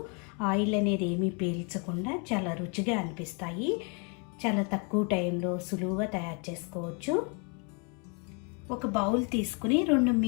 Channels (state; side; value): quieter; right; 36.1 dB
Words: ఆయిల్ అనేది ఏమీ పీల్చకుండా చాలా రుచిగా అనిపిస్తాయి. చాలా తక్కువ టైంలో సులువుగా తయారు చేసుకోవచ్చు. ఒక బౌల్ తీసుకుని